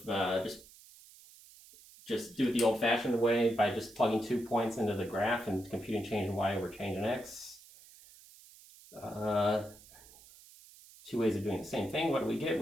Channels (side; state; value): right; noise; hiss, 22 dB below the sound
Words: just do it the old-fashioned way by just plugging 2 points into the graph and computing change in y over change in x. 2 ways of doing the same thing. What do we get?